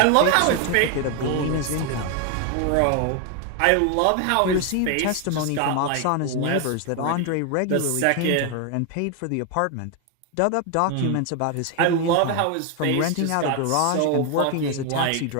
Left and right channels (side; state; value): both; different; correlation 0.01